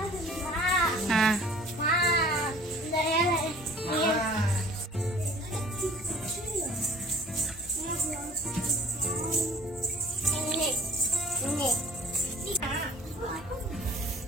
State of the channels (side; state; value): both; normal; correlation 0.49